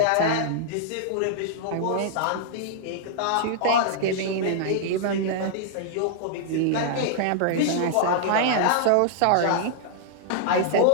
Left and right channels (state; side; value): different; both; correlation -0.01